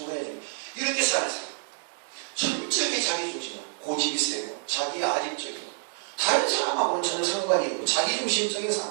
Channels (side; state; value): left; silent; digital silence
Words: 이렇게 사는 사람. 철저하게 자기중심이고 고집이 세고 자기 아집적이고 다른 사람하고는 전혀 상관이 없고 자기중심적인